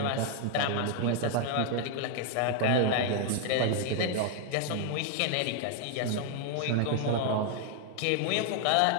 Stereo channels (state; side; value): different; both; correlation 0.00